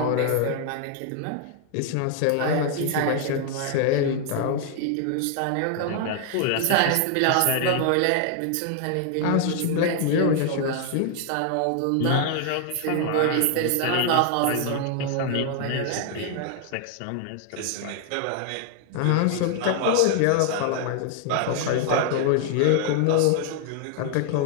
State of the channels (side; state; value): both; different; correlation 0.00